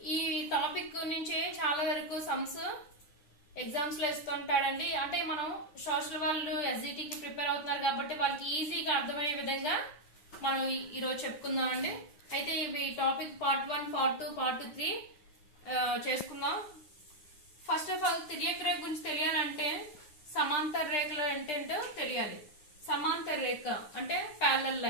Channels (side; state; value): right; late; 9.5 ms